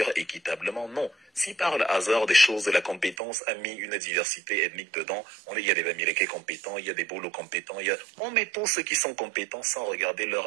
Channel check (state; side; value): drops out; left; at 3.2 s